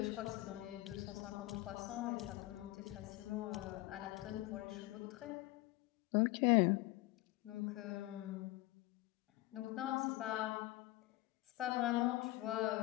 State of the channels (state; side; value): quieter; right; 18.5 dB